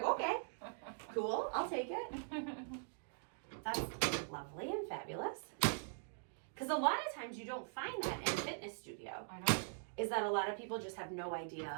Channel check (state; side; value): silent; left; digital silence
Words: okay, cool, I'll take it. That's lovely and fabulous. Because a lot of times you don't find that in a fitness studio. I know. Is that a lot of people just have no idea